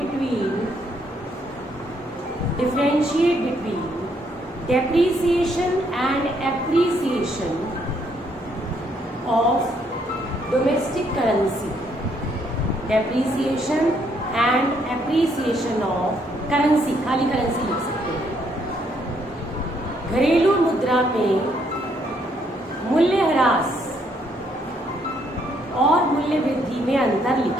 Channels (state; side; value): normal; both; correlation 0.71